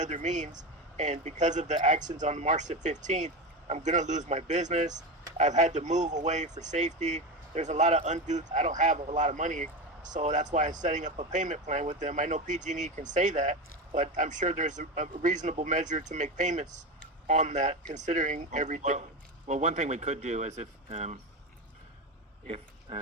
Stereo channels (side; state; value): both; normal; correlation 0.20